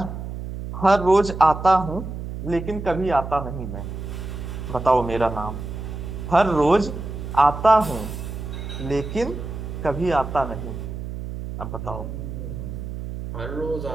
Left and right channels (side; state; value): right; noise; hum, 7 dB below the sound